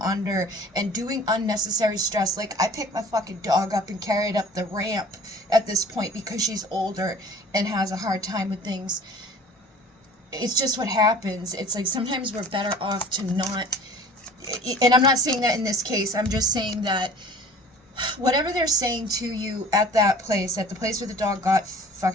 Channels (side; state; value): both; normal; correlation 0.46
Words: under and doing unnecessary stress. I pick my fucking dog up and carry it up the ramp at this point because she's older and has a hard time with things. It's just what happens. It's like, sometimes we're better off to not. And I'm not saying that in this case. I'm just saying that whatever they're saying to you at that place, at the place where the dog got